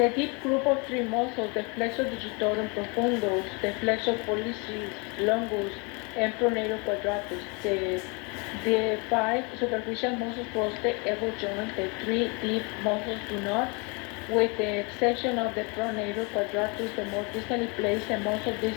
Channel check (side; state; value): right; quieter; 31.2 dB